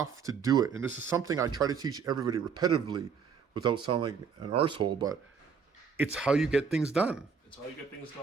to do it. And this is something I try to teach everybody repetitively without sounding like an arsehole, but it's how you get things done. It's how you get things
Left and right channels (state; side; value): quieter; left; 6.2 dB